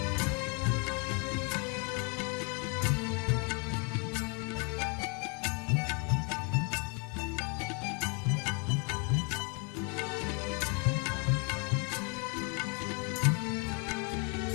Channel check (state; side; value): quieter; right; 34.8 dB